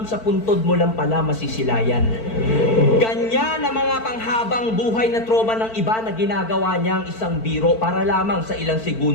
sa puntod mo lang pala masisilayan. Ganyan ang mga panghabang buhay na trauma ng iba na ginagawa niyang isang biro para lamang sa ilang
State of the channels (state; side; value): late; right; 4.5 ms